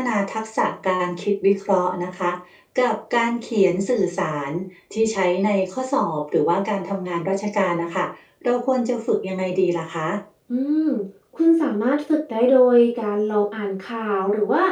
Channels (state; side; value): identical; both; correlation 1.00